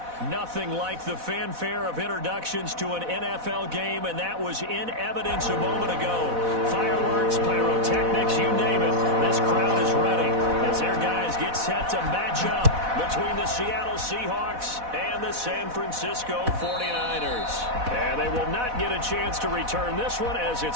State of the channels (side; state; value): left; late; 4.1 ms